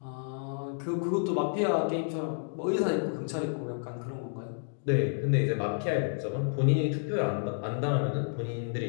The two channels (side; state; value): right; silent; digital silence